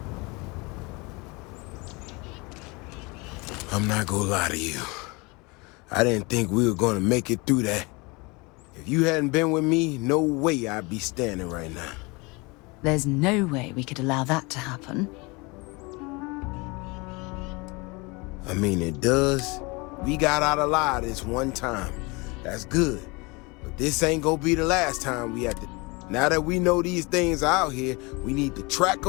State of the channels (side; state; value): right; quieter; 26.7 dB